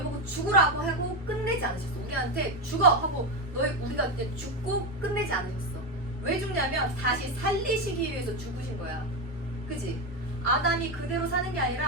보고 죽으라고 하고 끝내지 않으셨어. 우리한테 죽어 하고 우리가 이제 죽고 끝내지 않으셨어. 왜 죽냐면 다시 살리시기 위해서 죽으신 거야. 그지? 아담이 그대로 사는 게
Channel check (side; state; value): both; normal; correlation 0.12